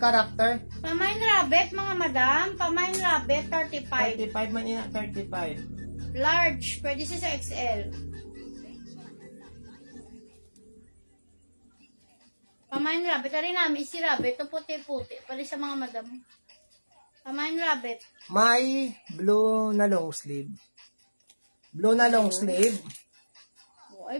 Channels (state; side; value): inverted; both; correlation -1.00